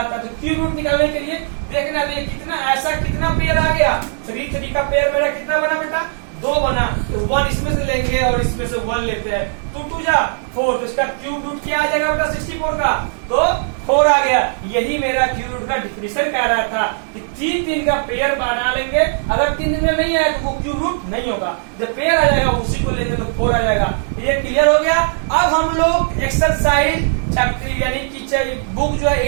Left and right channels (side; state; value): left; silent; 63 dB below the other